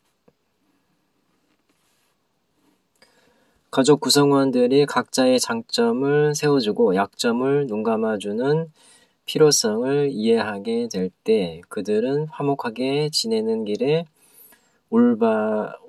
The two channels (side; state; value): both; identical; correlation 1.00